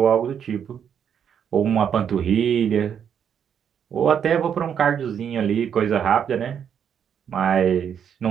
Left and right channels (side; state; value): left; quieter; 8.2 dB